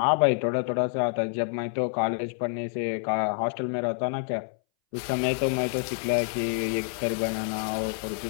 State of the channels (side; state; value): right; silent; 60 dB below the other